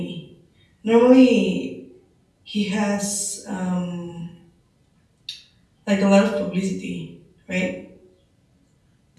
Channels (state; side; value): identical; both; correlation 1.00